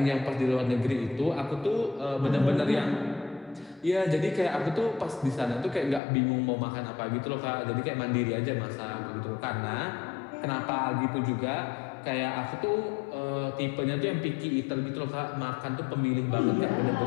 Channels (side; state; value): right; drops out; at 6.0 s